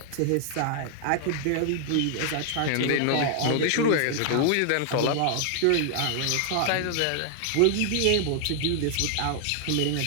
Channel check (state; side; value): different; both; correlation 0.00